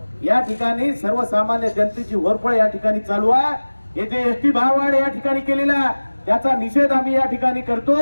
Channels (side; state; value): both; inverted; correlation -1.00